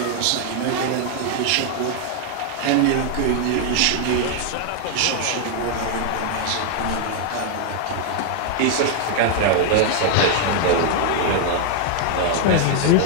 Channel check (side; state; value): both; different; correlation 0.00